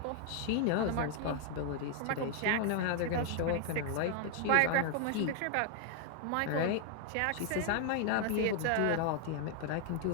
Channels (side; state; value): both; different; correlation 0.00